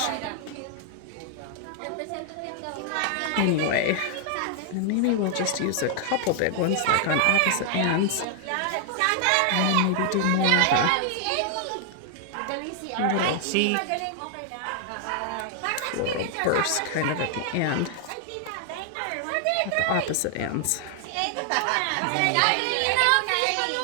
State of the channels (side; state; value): both; different; correlation 0.00